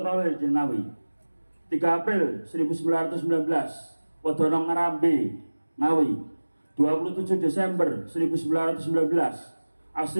di Ngawi. 3 April 1919, Wedono Ngarambe, Ngawi. 27 Desember 1919,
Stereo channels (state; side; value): inverted; both; correlation -1.00